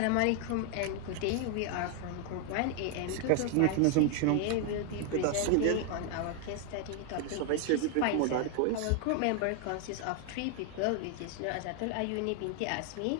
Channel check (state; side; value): different; both; correlation 0.00